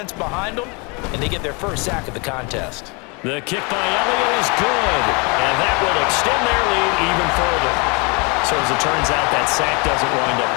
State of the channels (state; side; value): quieter; right; 30.9 dB